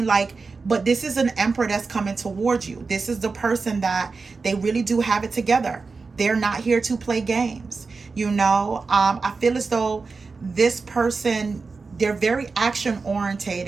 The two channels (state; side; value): quieter; left; 4.4 dB